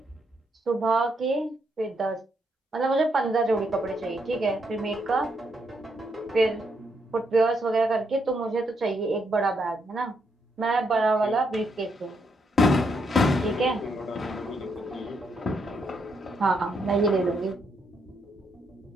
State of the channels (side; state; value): both; normal; correlation 0.77